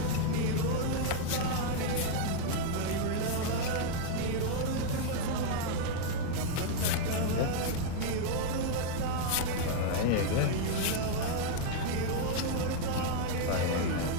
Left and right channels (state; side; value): different; both; correlation 0.00